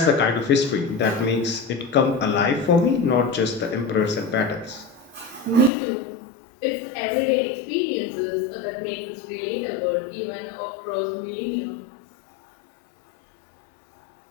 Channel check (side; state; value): right; drops out; at 5.7 s